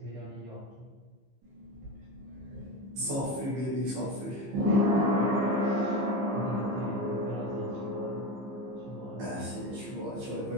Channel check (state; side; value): late; left; 15 ms